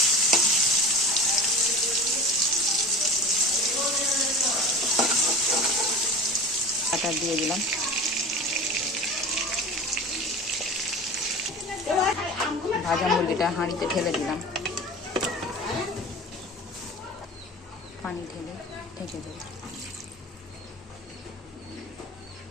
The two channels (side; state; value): both; normal; correlation 0.34